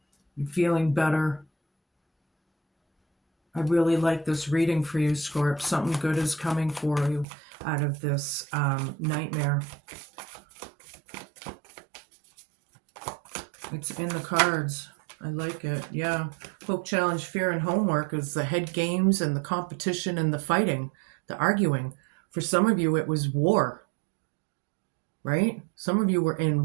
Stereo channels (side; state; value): left; drops out; at 7.2 s